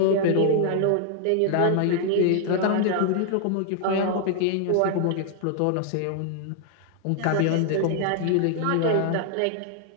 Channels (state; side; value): different; both; correlation 0.00